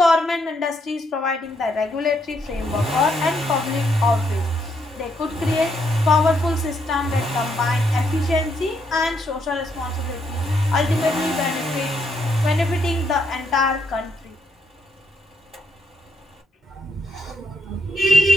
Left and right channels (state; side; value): normal; both; correlation 0.75